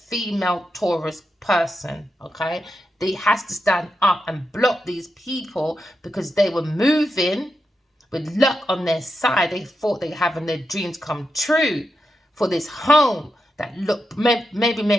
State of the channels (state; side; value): normal; both; correlation 0.87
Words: Taurus person, okay? They has to stand up and block these people because they were moving with luck on their side. They thought they were having their dreams come true for this home that maybe